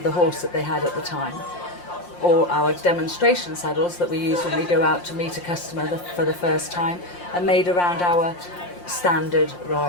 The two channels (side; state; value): right; late; 5.7 ms